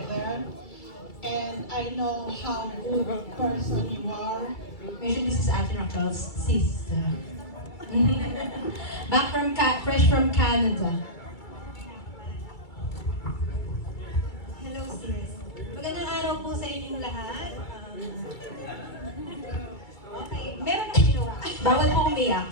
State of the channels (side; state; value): right; late; 2.3 ms